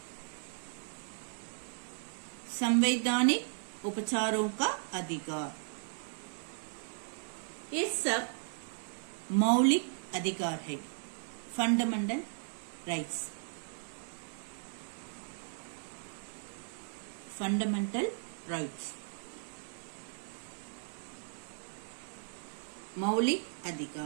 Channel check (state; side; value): silent; left; digital silence